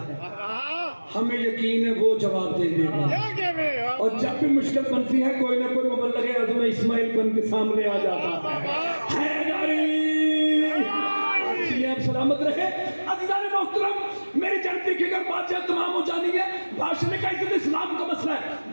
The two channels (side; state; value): both; inverted; correlation -1.00